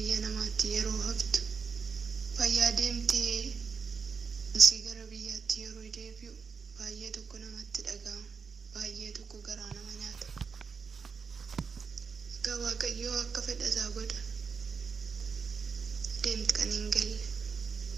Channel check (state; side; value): quieter; left; 5.7 dB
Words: namaatti yeroo haftu fayyaa deemtee si gara biyyaatti yeroo deebi'u baay'ee tokko namatti dhaga'ama, baay'ee tokko garaa nama nyaata. Egaa Waaqayyoo akka fedha isaa godha. Deemti kan hin galle